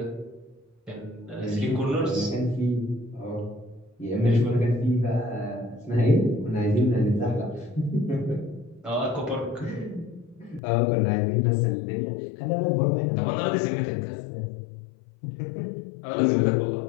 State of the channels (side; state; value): right; drops out; at 10.6 s